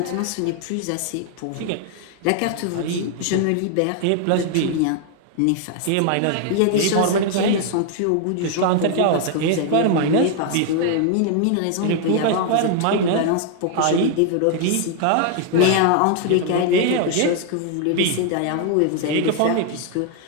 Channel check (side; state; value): both; different; correlation 0.00